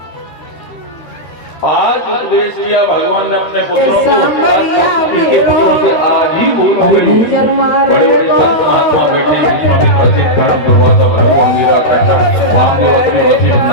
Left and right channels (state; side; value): late; right; 13 ms